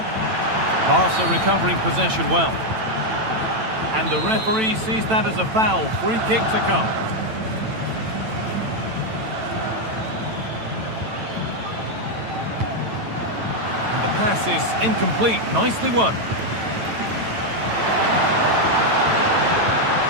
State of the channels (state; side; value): late; left; 9.0 ms